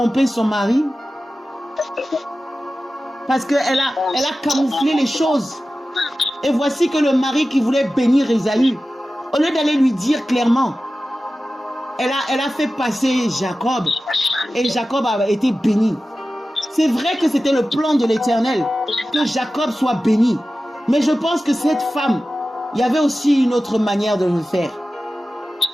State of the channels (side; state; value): both; normal; correlation 0.95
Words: son mari. Parce qu'elle a camouflé les choses. Et voici que le mari qui voulait bénir Ésaü, au lieu d'aller lui dire clairement, elle a fait passer Jacob. Et Jacob a été béni. C'est vrai que c'était le plan de l'Éternel, que Jacob soit béni. Mais je pense que cette femme, il y avait aussi une autre manière de le faire.